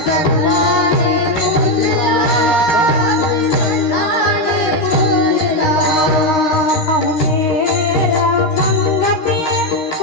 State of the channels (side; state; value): right; late; 13 ms